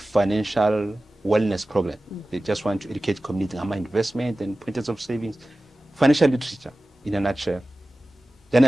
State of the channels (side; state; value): both; normal; correlation 0.96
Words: wellness program. They just want to educate community on investment and pointers of savings, financial literature in a nutshell. Then